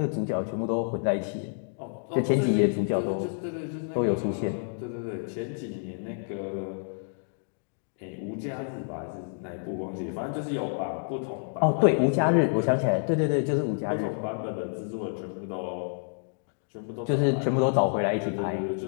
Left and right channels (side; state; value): right; silent; digital silence